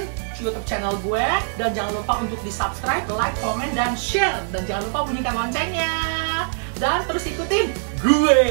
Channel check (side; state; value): left; silent; 57 dB below the other